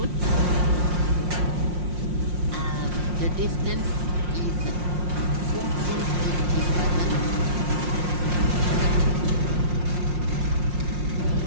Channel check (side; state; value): left; late; 5.6 ms